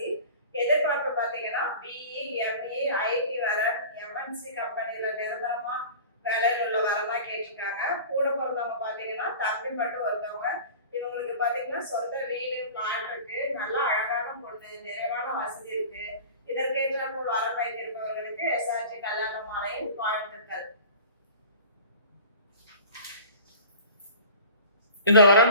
எதிர்பார்ப்பு பாத்தீங்கன்னா பிஇ, எம்இ, ஐடி வரன், எம்என்சி கம்பெனில நிரந்தரமா வேலையில் உள்ள வரமா கேட்டிருக்காங்க. கூட பிறந்தவங்க பாத்தீங்கன்னா தம்பி மட்டும் ஒருத்தவங்க. இவங்களுக்கு பாத்தீங்கன்னா சொந்த வீடு, பிளாட் இருக்கு. நல்லா அழகான பொண்ணு, நிறைவான வசதி இருக்கு. இதற்கேற்ற போல் வரம் வைத்திருப்பவர்களுக்கு எஸ்ஆர்ஜி கல்யாண மாலையின் வாழ்த்துக்கள். இந்த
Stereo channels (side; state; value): both; inverted; correlation -0.39